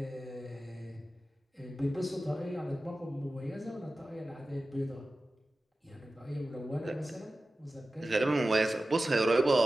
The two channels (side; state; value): both; normal; correlation 0.95